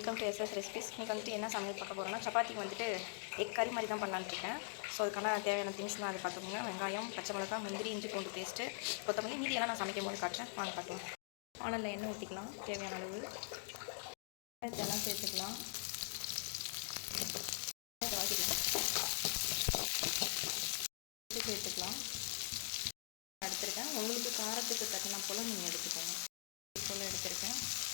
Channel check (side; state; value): right; silent; digital silence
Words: to SS recipes. இன்றைக்கி வந்துட்டு என்ன சமையல் பார்க்க போகிறோன்னா, சப்பாத்திக்கு வந்துட்டு எக் கறி மாதிரி தான் பண்ணலான்னு இருக்கேன். ஸோ அதுக்கான தேவையான திங்ஸ்லாம் அதை பார்த்துக்கோங்க. வெங்காயம், பச்சை மிளகா, முந்திரி, இஞ்சி பூண்டு பேஸ்ட்டு, கொத்தமல்லி, மீதியெல்லாம் நான் சமைக்கும் போது காட்டுறேன். வாங்க பார்க்கலாம். வானலில் எண்ணெய் ஊற்றிக்கலாம் தேவையான அளவு. இதெல்லாம் சேர்த்துக்கலாம். வதக்கிக்கலாம். சேர்த்துக்கலாம். எடுத்துருக்கேன். உங்களுக்கு காரத்துக்கு தட்டினா போல் நீங்கள் எடுத்துக்கோங்க. போல் எடுத்துருக்கேன்.